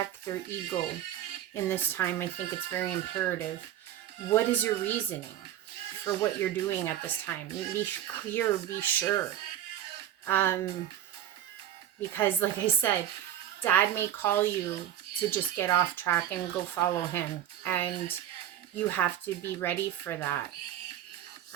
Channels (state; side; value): quieter; left; 11.2 dB